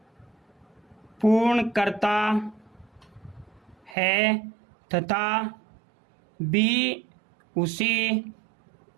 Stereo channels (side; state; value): left; drops out; at 4.0 s